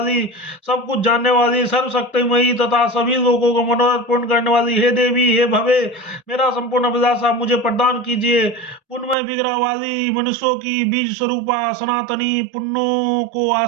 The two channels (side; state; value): left; drops out; at 9.2 s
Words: सब कुछ जानने वाली, सर्वशक्तिमयी तथा सभी लोगों को मनोरथ पूर्ण करने वाली हे देवी, हे भवे, मेरा संपूर्ण अभिलाषा आप मुझे प्रदान कीजिए। पुण्यमय विग्रह वाली, मनुष्यों की बीज स्वरूपा, सनातनी, पुण्यों को